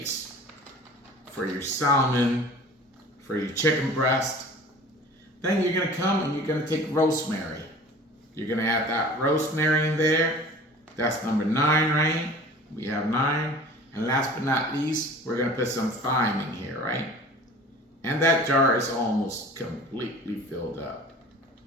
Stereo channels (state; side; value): normal; both; correlation 0.43